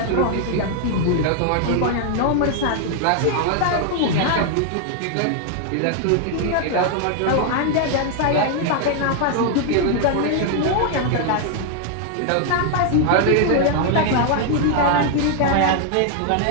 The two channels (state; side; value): different; both; correlation 0.00